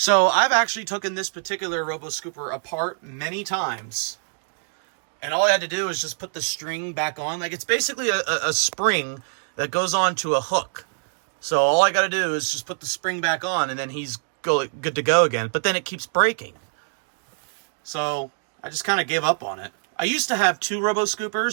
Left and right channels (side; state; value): left; silent; digital silence